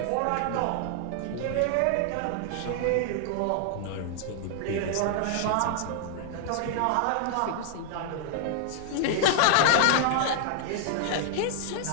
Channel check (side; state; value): both; different; correlation 0.00